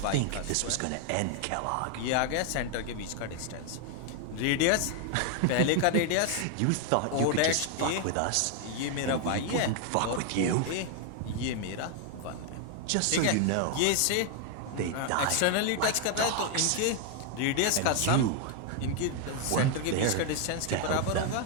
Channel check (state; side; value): different; both; correlation 0.00